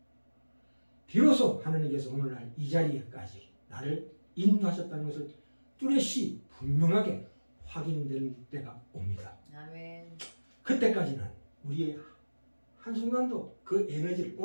비로소 하나님께서 오늘날 이 자리에까지 나를 인도하셨다는 것을 뚜렷이 분명하게 확인된 때가 옵니다. 아멘. 그때까지는 우리의 한순간도 그 에너지를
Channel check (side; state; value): both; inverted; correlation -1.00